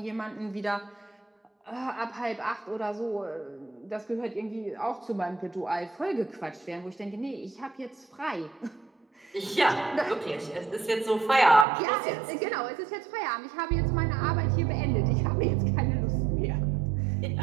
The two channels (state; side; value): drops out; left; at 11.7 s